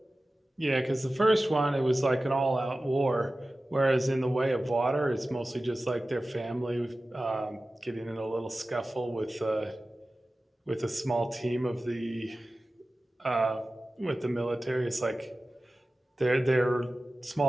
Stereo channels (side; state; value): both; normal; correlation 0.96